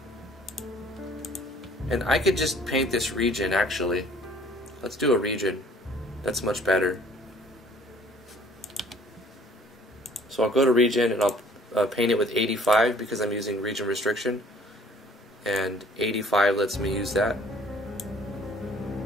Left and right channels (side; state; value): both; normal; correlation 0.55